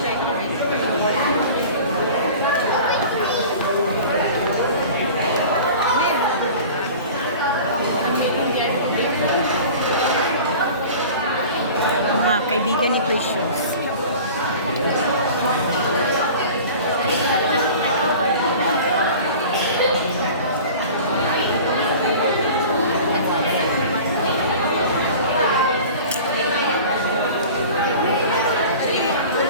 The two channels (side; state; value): both; inverted; correlation -0.40